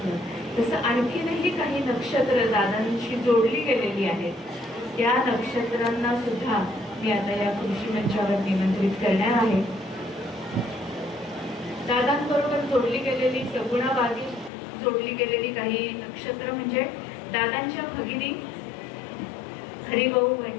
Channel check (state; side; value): drops out; right; at 14.5 s